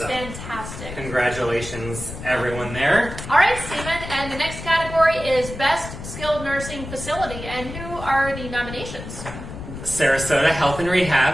fantastic. Congratulations, everyone there. All right, Stephen, and the next category is Best Skilled Nursing Facility. And who are the nominations? Sarasota Health and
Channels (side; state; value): left; noise; rumble, 10 dB below the sound